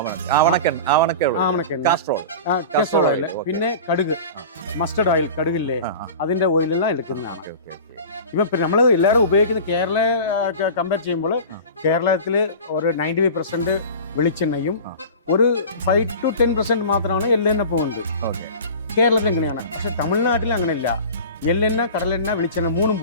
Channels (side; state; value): both; inverted; correlation -0.36